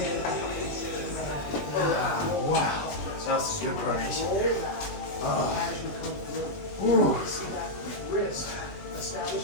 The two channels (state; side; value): late; right; 21 ms